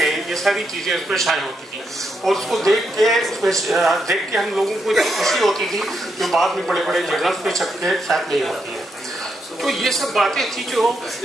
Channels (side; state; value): both; normal; correlation 0.81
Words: ये सारी चीज़ें उसमें शाये होती थी। और उसको देख के हम लोगों को इतनी खुशी होती थी जो बाद में बड़े बड़े जर्नल्स में छप के शायद नहीं होती है। तो ये सब बातें थी जो